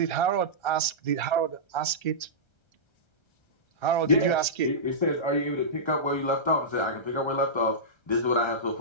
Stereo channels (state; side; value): late; right; 1.3 ms